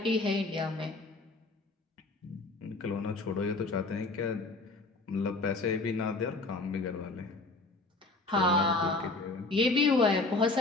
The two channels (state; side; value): quieter; right; 3.3 dB